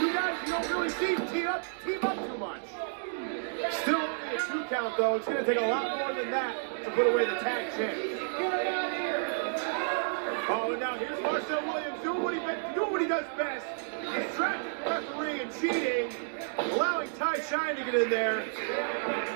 guys you don't really see team up too much. Still only a 2 count, though. It's going to take a lot more than that to put away the tag champ. Oh, and now here's Marcel Williams doing what he does best. Distracting the referee and cheating, allowing Ty Shine to get in there.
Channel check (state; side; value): silent; left; digital silence